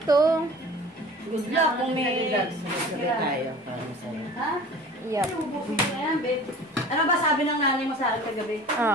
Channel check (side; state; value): both; normal; correlation 0.42